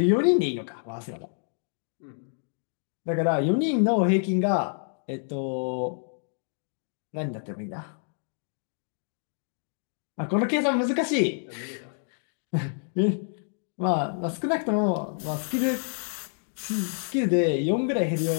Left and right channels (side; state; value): right; silent; digital silence